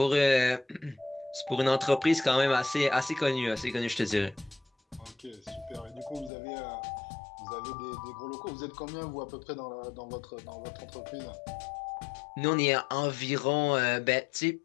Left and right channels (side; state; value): right; drops out; at 6.3 s